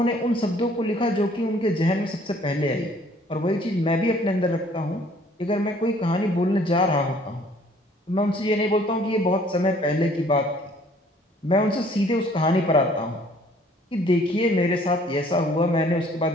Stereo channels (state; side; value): normal; both; correlation 0.58